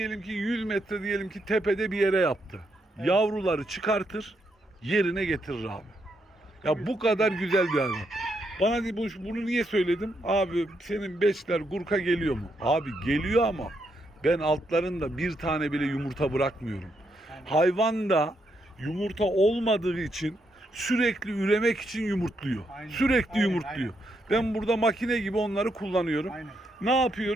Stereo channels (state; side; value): normal; both; correlation 0.79